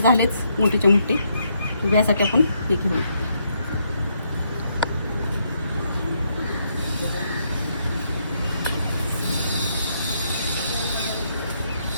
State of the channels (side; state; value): both; inverted; correlation -0.75